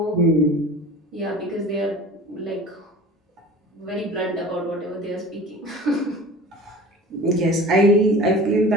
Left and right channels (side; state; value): both; normal; correlation 0.39